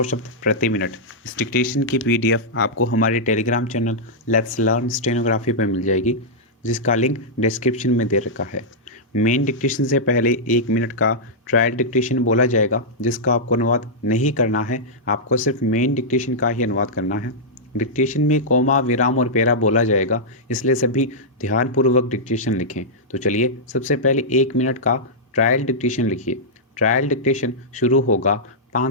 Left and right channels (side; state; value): both; normal; correlation -0.09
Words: शब्द प्रति मिनट। इस डिक्टेशन की पीडीएफ आपको हमारे Telegram channel let's learn stenography पर मिल जाएगी, जिसका लिंक डिस्क्रिप्शन में दे रखा है। मेन डिक्टेशन से पहले 1 मिनट का ट्रायल डिक्टेशन बोला जाएगा, जिसका आपको अनुवाद नहीं करना है। आपको सिर्फ मेन डिक्टेशन का ही अनुवाद करना है। डिक्टेशन में कोमा, विराम और पेरा बोला जाएगा, इसलिए सभी ध्यानपूर्वक डिक्टेशन लिखें। तो चलिए सबसे पहले 1 मिनट का ट्रायल डिक्टेशन लिखिए। ट्रायल डिक्टेशन शुरू होगा